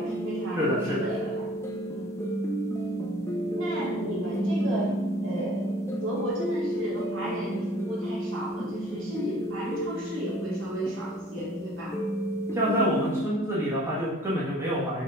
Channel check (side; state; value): both; normal; correlation 0.54